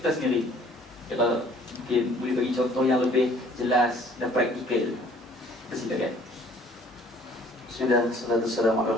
sendiri. Kalau mungkin boleh bagi contoh yang lebih jelas dan praktikal. Persilakan. Bismillah, salatu wassalamu ala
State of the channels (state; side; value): normal; both; correlation 0.56